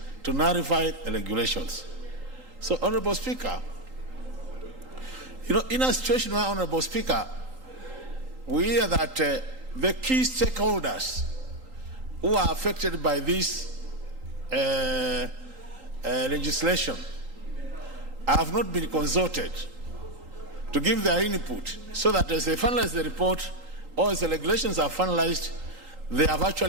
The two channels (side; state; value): left; late; 3.8 ms